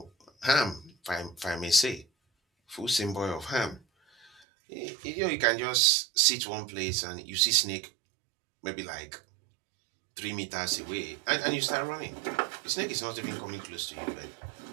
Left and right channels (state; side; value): drops out; left; at 4.4 s